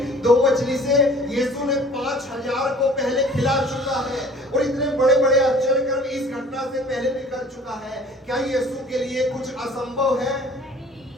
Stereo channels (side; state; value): both; normal; correlation 0.49